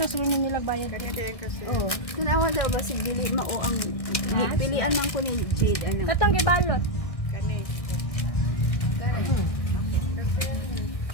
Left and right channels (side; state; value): right; late; 1.6 ms